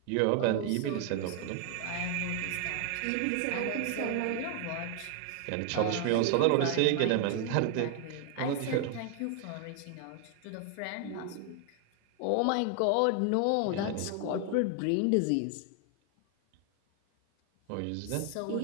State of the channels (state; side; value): different; both; correlation 0.00